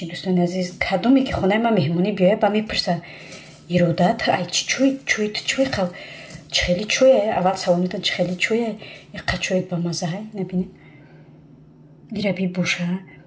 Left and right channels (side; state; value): both; identical; correlation 1.00